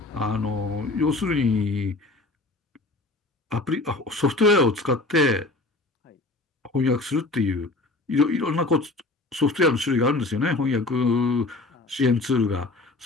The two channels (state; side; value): quieter; right; 3.1 dB